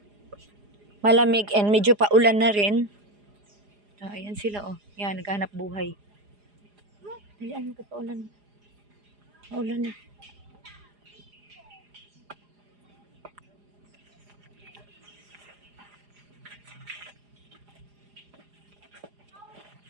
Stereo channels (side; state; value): left; late; 4.9 ms